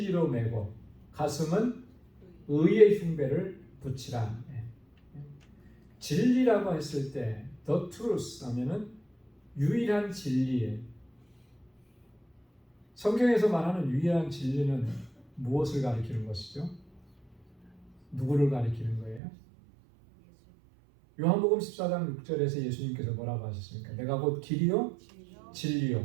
매고, 가슴은 의의 흉배를 붙이라. 진리라고 했을 때 the truth 하면은 유일한 진리예요. 성경에서 말하는 유일한 진리는 무엇을 가리키는 것이죠? 누구를 가리키는 거예요? 요한복음 14장 6절에서 예수님께서 뭐라고 하셨습니까? 내가 곧 길이요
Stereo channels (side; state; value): left; drops out; at 19.2 s